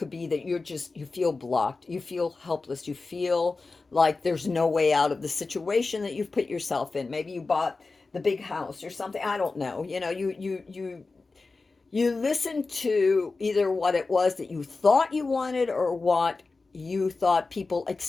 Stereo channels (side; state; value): right; quieter; 3.8 dB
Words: be that you feel blocked, you feel helpless, you feel like there's no way out of the situation that you've put yourself in. Maybe you bought the big house or something. I don't know. You listen to either what it was that you thought you wanted, or what you thought people